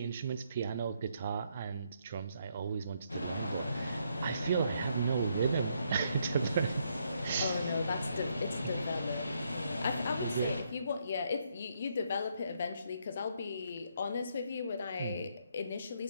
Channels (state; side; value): inverted; both; correlation -0.74